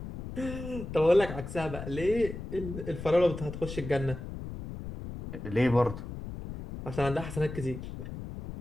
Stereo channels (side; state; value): left; noise; rumble, 9 dB below the sound